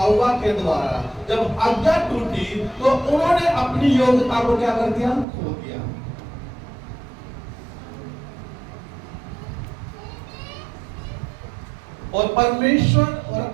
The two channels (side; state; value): left; drops out; at 5.2 s